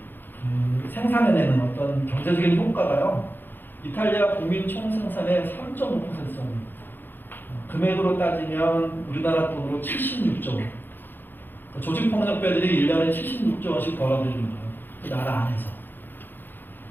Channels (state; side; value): late; right; 0.094 ms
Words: 생산해내는 어떤 경제적인 효과가요, 이탈리아 국민 총생산의 3.5%입니다. 금액으로 따지면 우리나라 돈으로 76조 원. 조직폭력배들이 1년에 76조 원씩 벌어들이는 거예요. 그 나라 안에서.